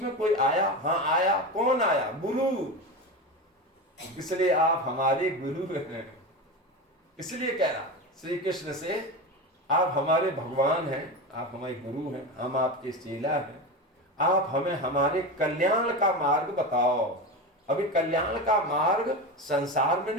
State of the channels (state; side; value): normal; both; correlation 0.22